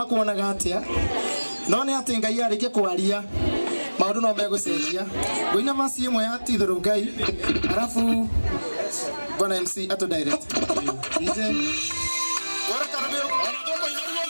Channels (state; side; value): inverted; both; correlation -1.00